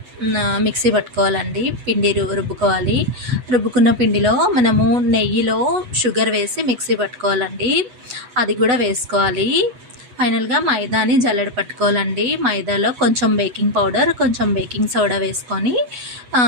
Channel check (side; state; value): left; late; 8.1 ms